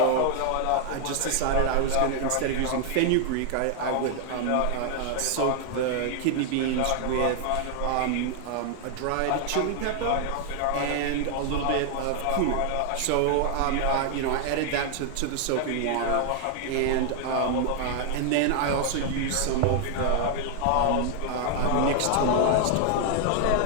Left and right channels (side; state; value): both; different; correlation 0.00